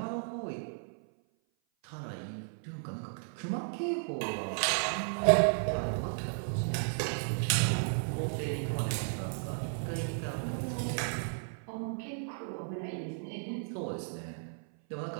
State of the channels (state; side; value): silent; left; 55 dB below the other